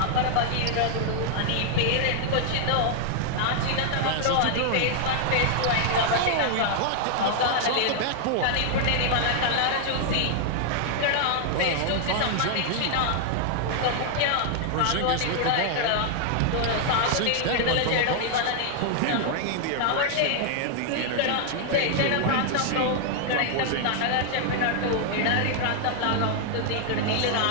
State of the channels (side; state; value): both; different; correlation 0.00